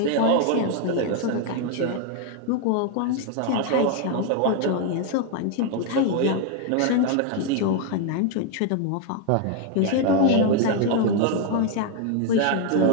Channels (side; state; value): both; different; correlation 0.00